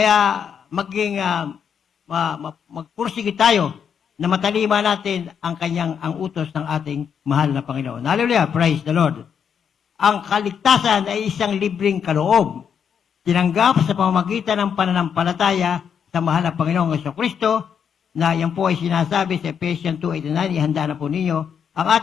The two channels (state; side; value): quieter; right; 7.5 dB